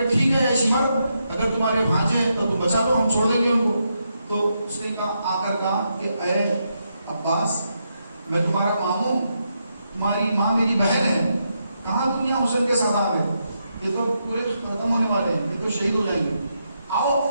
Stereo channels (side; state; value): both; inverted; correlation -0.82